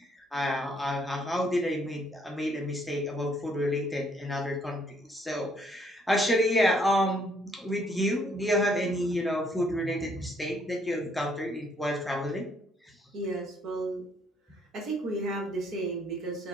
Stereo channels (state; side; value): normal; both; correlation 0.67